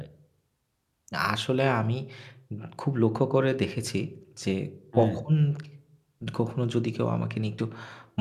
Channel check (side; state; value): both; identical; correlation 1.00